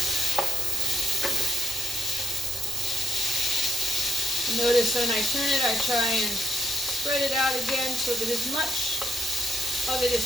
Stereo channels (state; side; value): normal; both; correlation 0.73